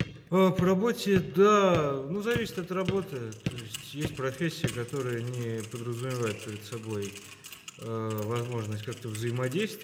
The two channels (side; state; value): both; identical; correlation 1.00